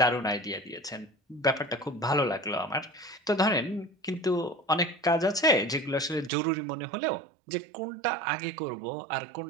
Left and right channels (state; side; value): drops out; left; at 6.3 s